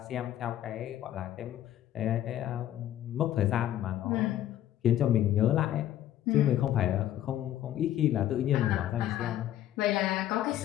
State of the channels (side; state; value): right; quieter; 12.3 dB